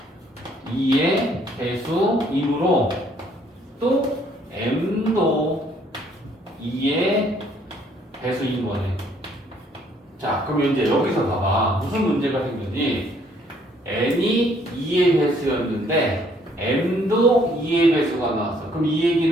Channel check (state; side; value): normal; both; correlation 0.64